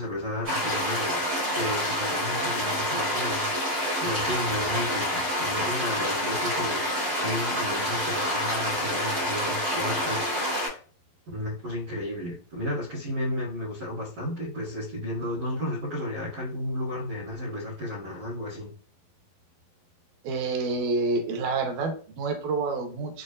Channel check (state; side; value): late; left; 11 ms